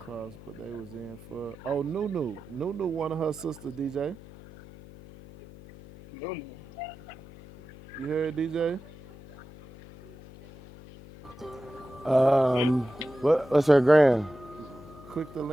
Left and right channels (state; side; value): noise; left; hum, 18 dB below the sound